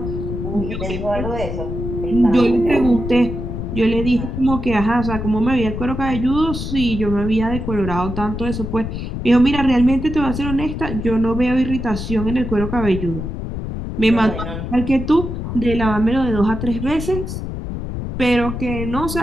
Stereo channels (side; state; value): left; noise; rumble, 5 dB below the sound